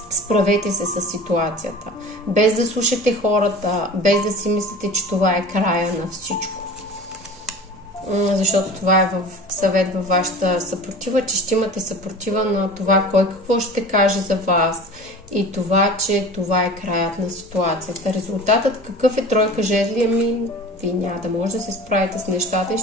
Справете се с ситуацията. Без да слушате хората, без да си мислите, че това е края на всичко. Защото това е съвет във вашата съпротива, че ще имате съпротива на това кой какво ще каже за вас и това, че това е краят на ситуацията. Резултатът какъв е тройка жезли? Вие няма да може да се справите с нещата и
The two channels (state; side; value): normal; both; correlation 0.39